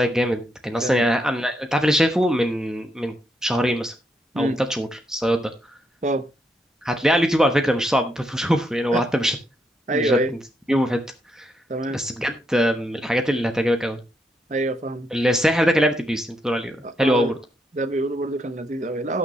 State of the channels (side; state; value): both; normal; correlation 0.78